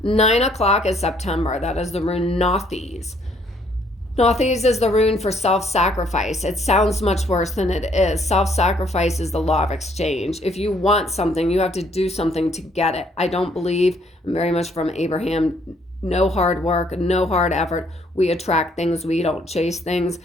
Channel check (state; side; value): normal; both; correlation 0.66